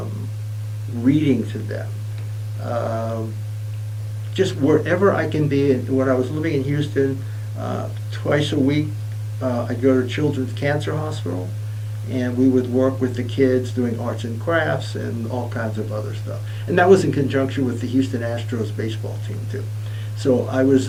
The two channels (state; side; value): identical; both; correlation 1.00